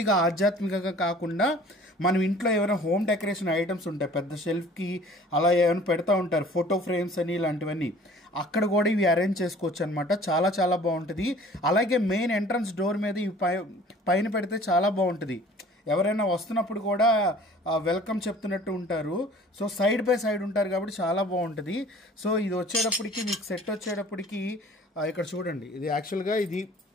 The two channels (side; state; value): both; normal; correlation 0.49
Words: ఆధ్యాత్మికంగా కాకుండా మనం ఇంట్లో ఏమైనా హోమ్ డెకరేషన్ ఐటమ్స్ ఉంటాయి, పెద్ద షెల్ఫ్కి అలా ఏమైనా పెడతా ఉంటారు, ఫోటో ఫ్రేమ్స్ అని ఇలాంటివన్నీ, అక్కడ కూడా ఇవి అరేంజ్ చేసుకోవచ్చు అనమాట. చాలా చాలా బాగుంటుంది. అలాగే మెయిన్ ఎంట్రన్స్ డోర్ మీద ఇవి పైన పెడితే చాలా బాగుంటుంది. ఎవరైనా వస్తున్నప్పుడు కూడా వెల్కమ్ చెప్తున్నట్టు ఉంటారు. సో సైడ్ బై సైడ్ ఉంటారు కాబట్టి చాలా బాగుంటుంది. సో ఇది వచ్చేటప్పటికి మీకు సెట్ వచ్చేటప్పటికి ఇక్కడ చూడండి, ఇది యాక్చువల్గా ఇది